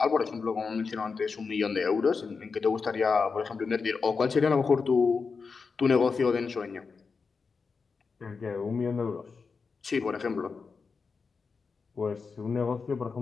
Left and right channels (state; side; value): quieter; right; 5.0 dB